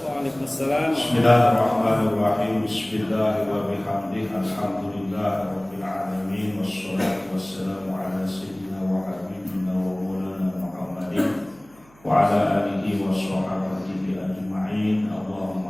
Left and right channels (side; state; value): right; noise; hum, 28 dB below the sound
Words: Waalaikumsalam. Bismillahirrahmanirrahim. Bismillahirrahmanirrahim. Alhamdulillahirabbil alamin wassalatu wassalamu ala sayyidina wa habibina wa maulana Muhammadin wa ala alihi wa sahbihi ajma'in.